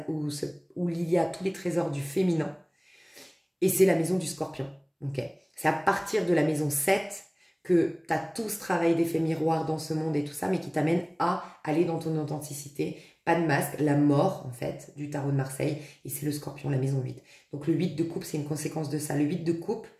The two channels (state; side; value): identical; both; correlation 1.00